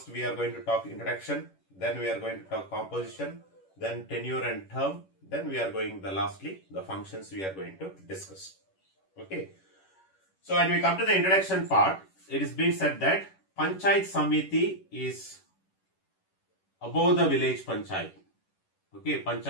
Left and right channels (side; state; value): right; late; 11 ms